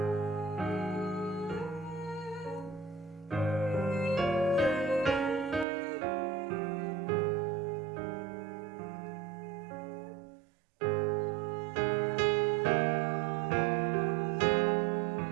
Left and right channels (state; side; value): drops out; left; at 5.7 s